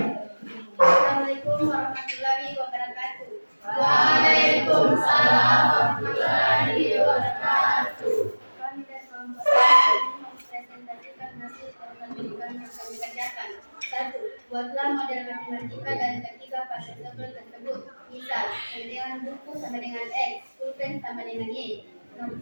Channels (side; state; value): both; inverted; correlation -1.00